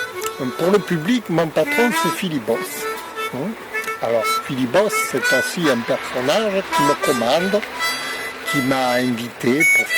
Pour le public, mon patron c'est Philibos. Alors Philibos c'est aussi un personnage qui me commande, qui m'a invité pour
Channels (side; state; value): both; identical; correlation 1.00